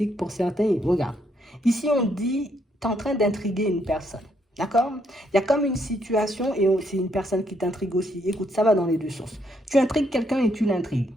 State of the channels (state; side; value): normal; both; correlation 0.73